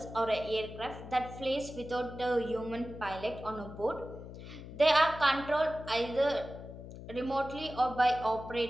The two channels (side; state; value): left; noise; hum, 13 dB below the sound